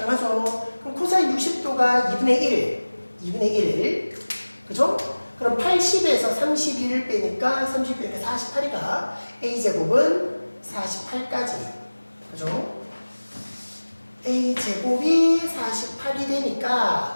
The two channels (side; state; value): both; inverted; correlation -1.00